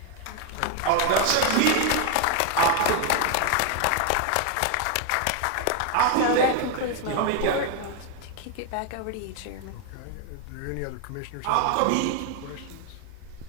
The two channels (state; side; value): different; both; correlation 0.01